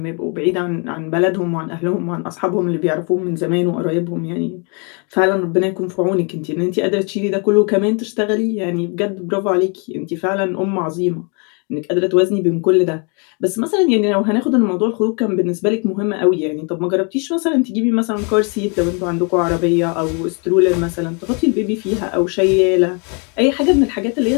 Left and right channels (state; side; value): quieter; right; 35.4 dB